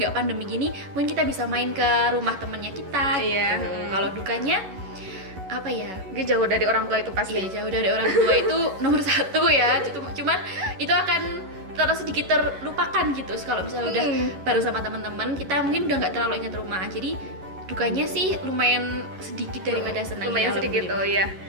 pandemi gini, mungkin kita bisa main ke rumah temennya kita. Iya, Gitu. Kalau dukanya apa ya? Dia jauh dari orang tua itu pasti. Iya, jauh dari orang tua itu nomor satu ya. Cuman itu akan terus sedikit terlupakan gitu. Kalau misalnya udah baru sama teman-teman, kita mungkin udah nggak terlalu ingat rumah. Jadi dukanya sih lumayan sedikit daripada senangnya. Lumayan sedikit tuh ya.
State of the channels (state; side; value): late; left; 11 ms